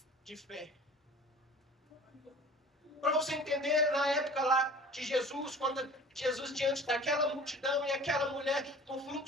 de fé. Para você entender, na época lá de Jesus, quando Jesus diante daquela multidão e aquela mulher com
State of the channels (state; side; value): normal; both; correlation 0.44